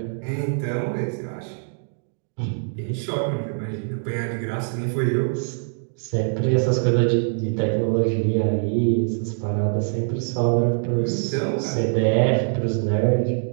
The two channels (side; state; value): left; silent; digital silence